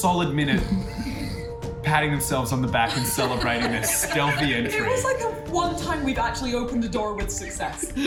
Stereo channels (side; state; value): both; identical; correlation 1.00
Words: minute patting themselves on the back and celebrating their stealthy entry. It was like the one time we've actually opened a door with success.